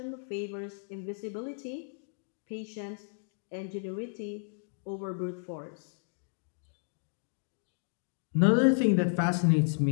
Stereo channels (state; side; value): silent; right; digital silence